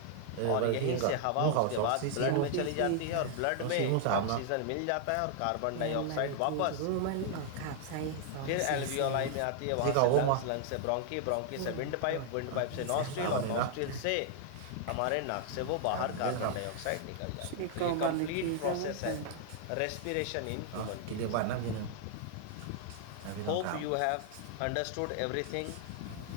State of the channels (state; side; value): different; both; correlation 0.00